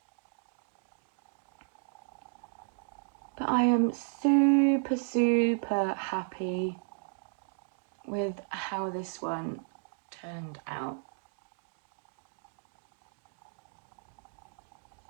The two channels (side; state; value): left; silent; digital silence